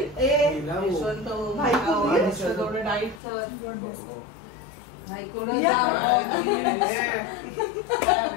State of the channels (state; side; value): drops out; right; at 3.2 s